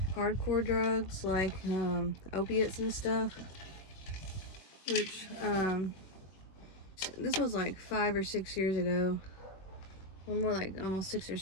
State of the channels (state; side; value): late; right; 21 ms